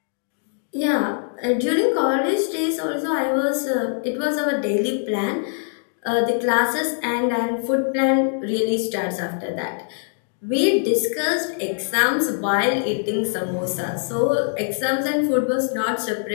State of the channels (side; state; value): right; silent; digital silence